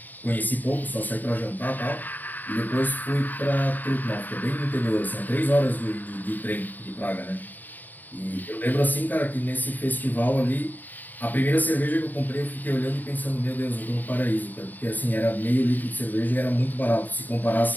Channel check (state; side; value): late; right; 0.086 ms